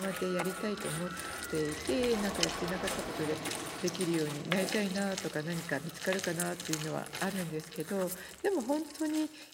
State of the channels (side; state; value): both; identical; correlation 1.00